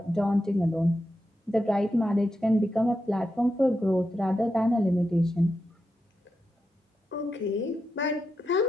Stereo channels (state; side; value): normal; both; correlation 0.87